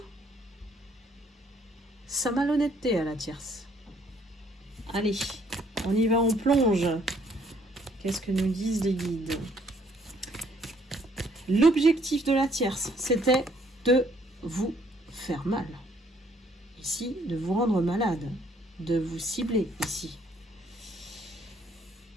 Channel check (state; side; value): normal; both; correlation 0.65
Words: sa malhonnêteté à la tierce. Allez, on y va, on plonge. Qu'est-ce que nous disent les guides? L'objectif de la tierce, c'était de vous faire mal. Ici, de vous rendre malade, de vous cibler ici.